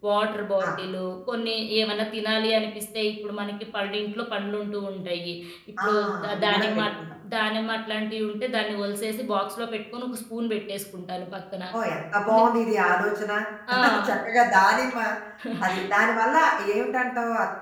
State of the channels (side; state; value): both; identical; correlation 1.00